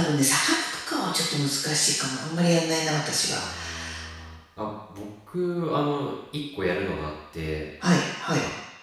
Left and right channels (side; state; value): both; identical; correlation 1.00